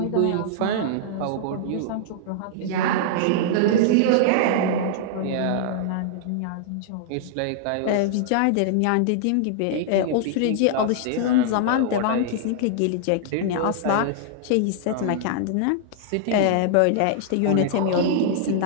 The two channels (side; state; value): both; different; correlation -0.01